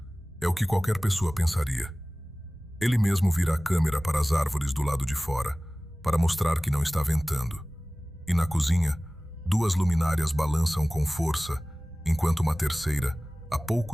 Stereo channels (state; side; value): normal; both; correlation 0.98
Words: É o que qualquer pessoa pensaria. Ele mesmo vira a câmera para as árvores do lado de fora, para mostrar que não está ventando. E na cozinha, 2 luminárias balançam com força, enquanto uma terceira, a